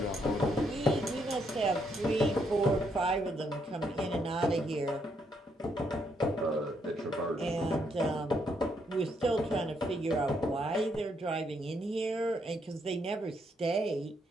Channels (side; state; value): both; normal; correlation 0.75